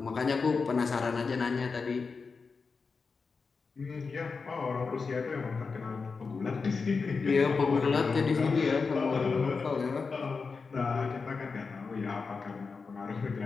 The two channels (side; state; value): right; quieter; 4.8 dB